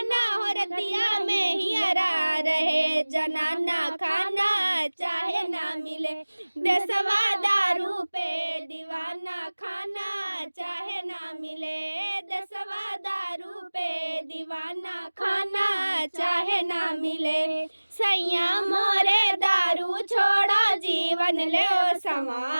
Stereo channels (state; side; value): inverted; both; correlation -1.00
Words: हो, रतिया में हियरा रहे जनाना खाना, चाहे ना मिले दसवा दारू पे दीवाना खाना, चाहे ना मिले दसवा दारू पे दीवाना खाना, चाहे ना मिले। सैया मोरे दारू छोड़ा, जीवन ले